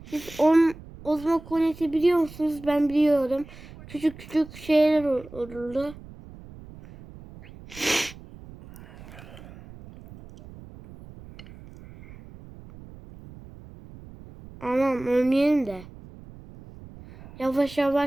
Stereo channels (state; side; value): noise; right; rumble, 18 dB below the sound